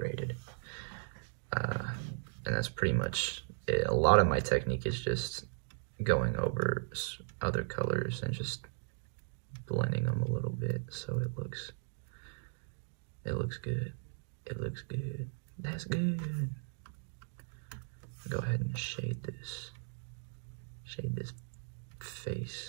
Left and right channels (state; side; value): silent; left; digital silence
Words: And that's pretty much it. A lot of my technique is just going over other colors and just blending them a little bit so it looks good. It looks good. That's good. Go ahead and shade this